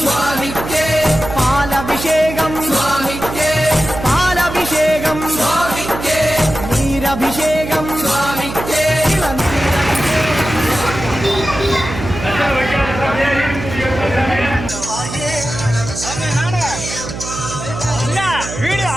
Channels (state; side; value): noise; right; hum, 8 dB below the sound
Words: சுவாமிக்கே, பால் அபிஷேகம் சுவாமிக்கே, பால் அபிஷேகம் சுவாமிக்கே, நீர் அபிஷேகம் சுவாமிக்கே,